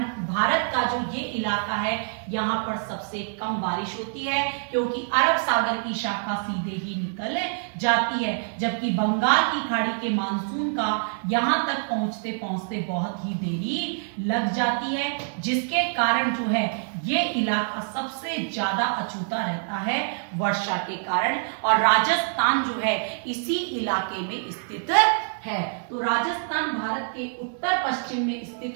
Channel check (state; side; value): silent; left; digital silence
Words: भारत का जो ये इलाका है यहाँ पर सबसे कम बारिश होती है, क्योंकि अरब सागर की शाखा सीधे ही निकल जाती है, जबकि बंगाल की खाड़ी के मानसून का यहाँ तक पहुंचते पहुंचते बहुत ही देरी लग जाती है, जिसके कारण जो है ये इलाका सबसे ज्यादा अछूता रहता है वर्षा के कारण, और राजस्थान जो है इसी इलाके में स्थित है। तो राजस्थान भारत के उत्तर पश्चिम में